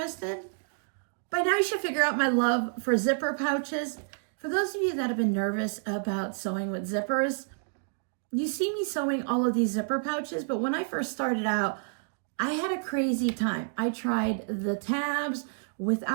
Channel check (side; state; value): left; silent; digital silence